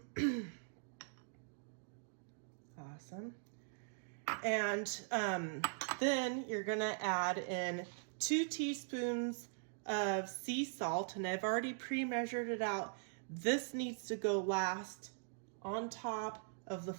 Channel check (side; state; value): left; silent; digital silence